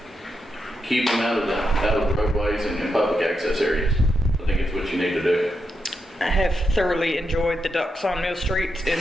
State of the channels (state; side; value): normal; both; correlation 0.84